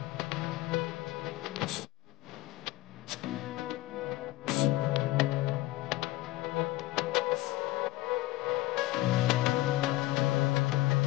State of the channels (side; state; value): right; quieter; 18.0 dB